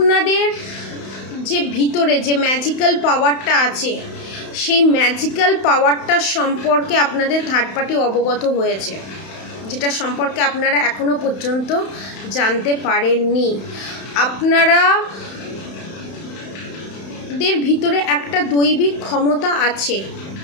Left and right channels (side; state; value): right; late; 31 ms